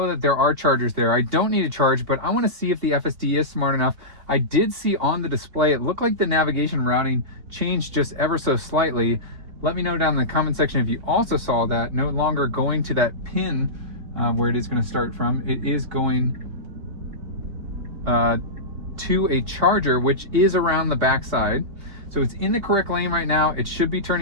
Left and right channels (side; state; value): left; late; 3.6 ms